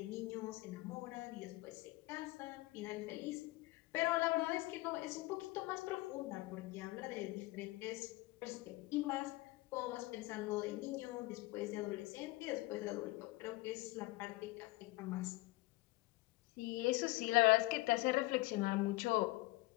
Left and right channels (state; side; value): quieter; right; 20.8 dB